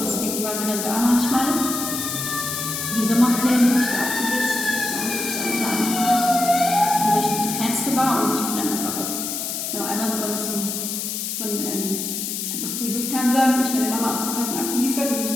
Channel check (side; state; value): left; noise; hiss, 3 dB below the sound